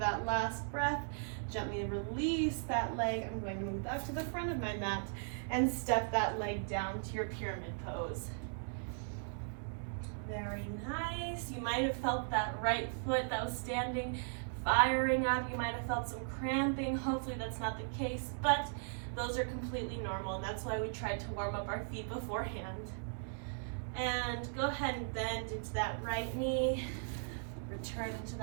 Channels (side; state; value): left; silent; digital silence